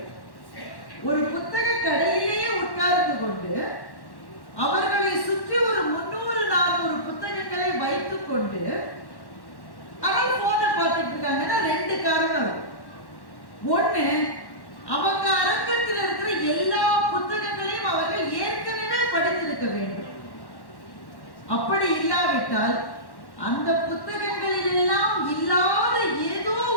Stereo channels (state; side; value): late; right; 1.1 ms